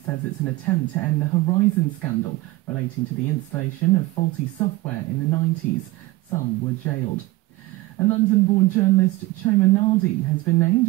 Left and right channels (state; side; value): quieter; left; 19.9 dB